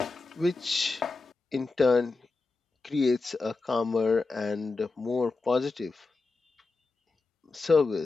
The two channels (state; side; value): quieter; right; 3.8 dB